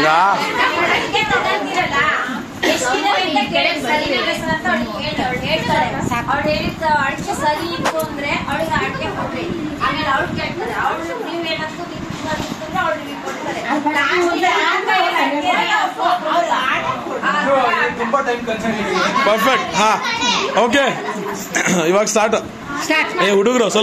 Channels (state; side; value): identical; both; correlation 1.00